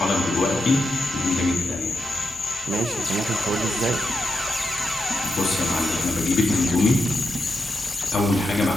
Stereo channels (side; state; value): both; normal; correlation 0.85